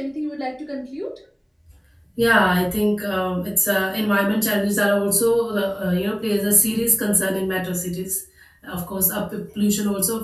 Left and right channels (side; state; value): both; identical; correlation 1.00